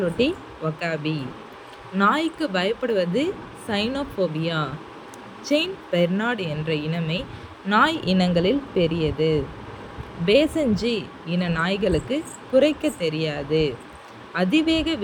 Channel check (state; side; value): identical; both; correlation 1.00